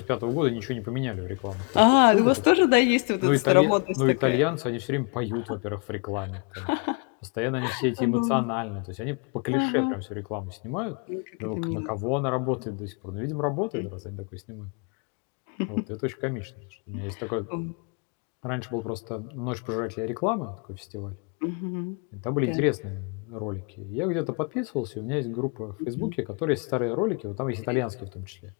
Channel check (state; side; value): quieter; right; 36.4 dB